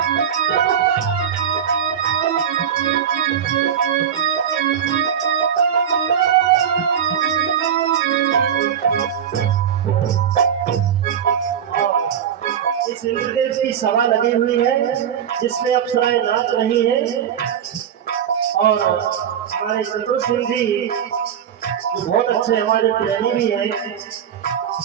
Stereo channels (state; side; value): quieter; left; 8.7 dB